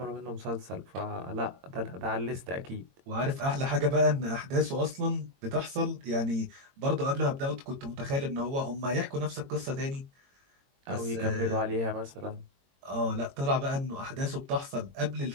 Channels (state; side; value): late; left; 22 ms